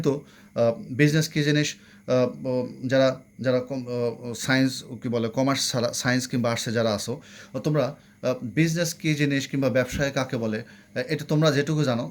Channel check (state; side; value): identical; both; correlation 1.00